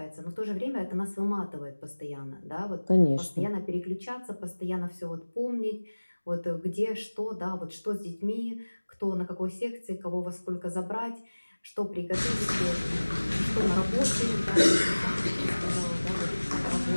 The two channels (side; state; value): both; inverted; correlation -1.00